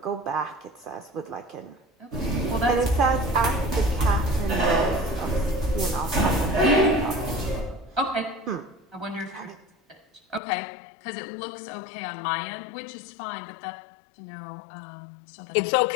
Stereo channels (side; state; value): right; drops out; at 10.4 s